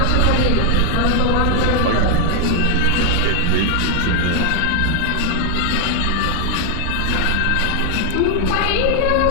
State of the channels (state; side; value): different; both; correlation 0.00